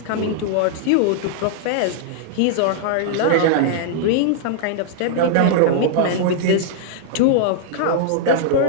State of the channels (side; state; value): both; different; correlation -0.01